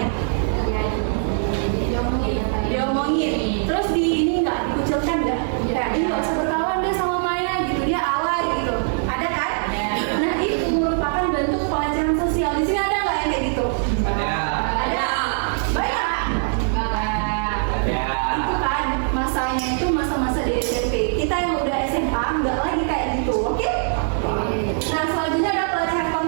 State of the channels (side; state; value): left; silent; digital silence